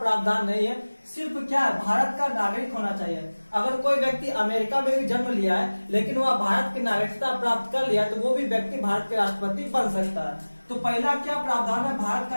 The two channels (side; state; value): both; inverted; correlation -1.00